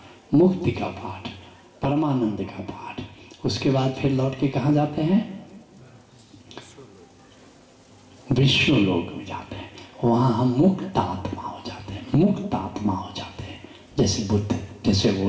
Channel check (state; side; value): identical; both; correlation 1.00